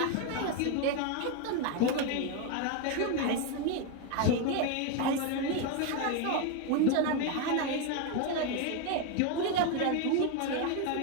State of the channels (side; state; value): both; different; correlation 0.02